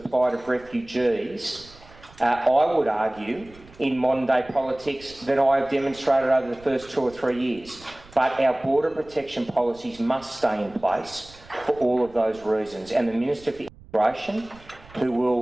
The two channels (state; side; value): noise; right; rumble, 23 dB below the sound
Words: of refugees, I would argue, in modern day politics than I have demonstrated over the first 2 or 3 years. But our border protection policies must stay in place for all of those reasons. And the Minister for Immigration, who